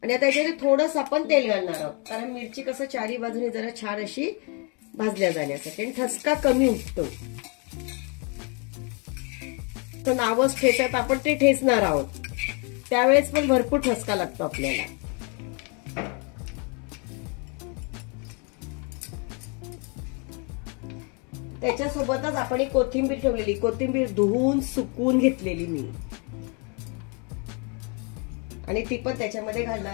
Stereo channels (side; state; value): right; quieter; 34.9 dB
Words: आणि आता याच्यात थोडंसं आपण तेल घालणार आहोत, कारण मिरची कसं चारी बाजूने जरा छान अशी भाजल्या जाण्यासाठी आणि ठसका कमी उठतो. तर नावच ठेचत आपण ते ठेचणार आहोत, त्यावेळेस पण भरपूर ठसका लागतो आपल्याला. त्याच्यासोबतच आपण एक कोथिंबीर ठेवलेली, कोथिंबीर धुवून सुकवून घेतलेली मी, आणि ती पण त्याच्यामध्ये